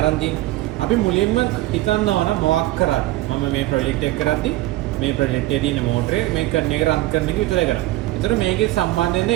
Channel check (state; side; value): quieter; left; 17.1 dB